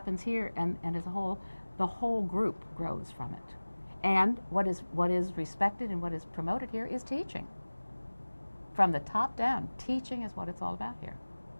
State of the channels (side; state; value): both; inverted; correlation -1.00